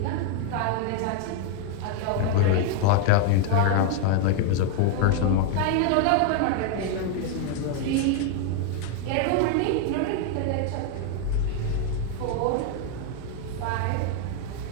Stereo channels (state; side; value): different; both; correlation 0.00